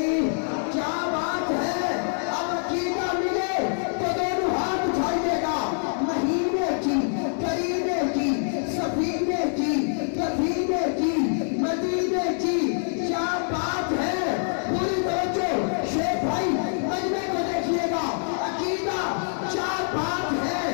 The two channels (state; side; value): silent; right; 58 dB below the other